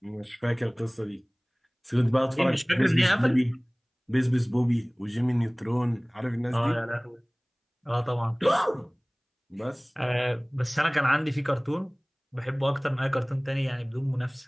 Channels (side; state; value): both; identical; correlation 1.00